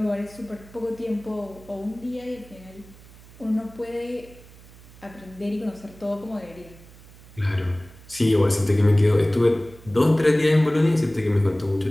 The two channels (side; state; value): right; noise; hum, 22 dB below the sound